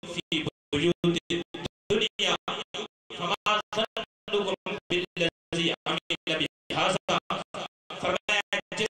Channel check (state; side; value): identical; both; correlation 1.00